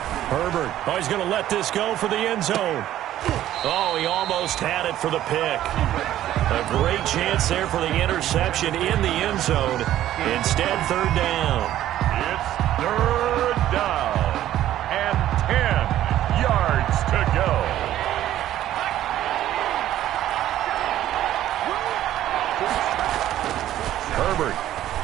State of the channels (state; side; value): quieter; left; 12.8 dB